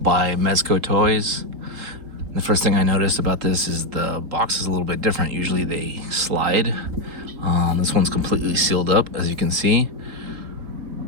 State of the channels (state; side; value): late; left; 3.8 ms